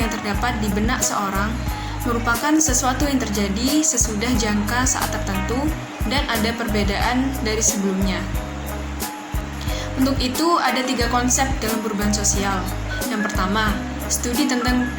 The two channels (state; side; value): identical; both; correlation 1.00